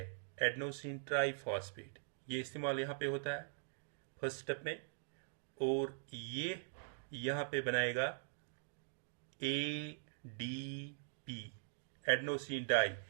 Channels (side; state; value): left; silent; digital silence